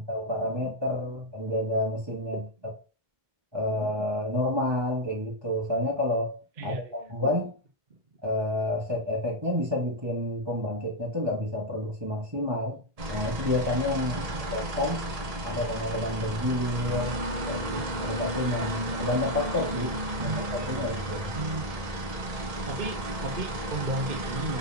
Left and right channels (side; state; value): left; late; 1.7 ms